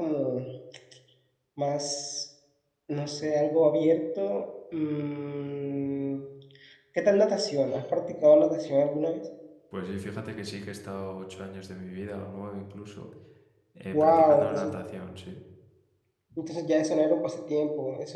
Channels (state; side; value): identical; both; correlation 1.00